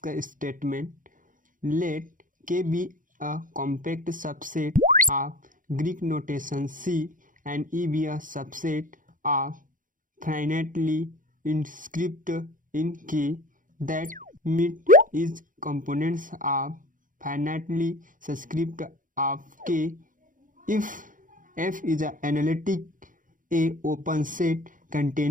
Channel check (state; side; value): late; left; 0.39 ms